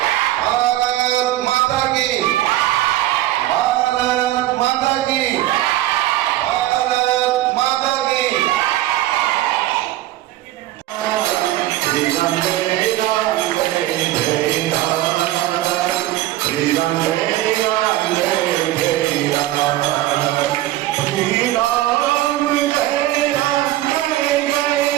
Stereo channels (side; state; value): left; quieter; 15.1 dB